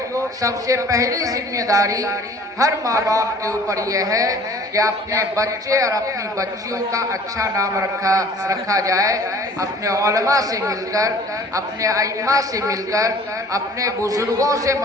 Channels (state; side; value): normal; both; correlation 0.50